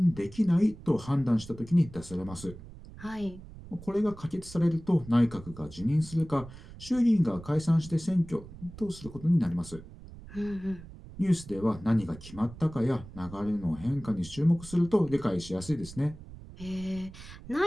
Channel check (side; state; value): right; noise; rumble, 16 dB below the sound